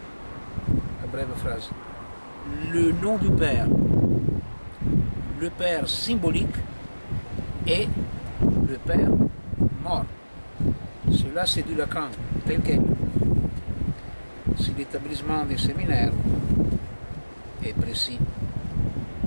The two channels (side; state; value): both; inverted; correlation -1.00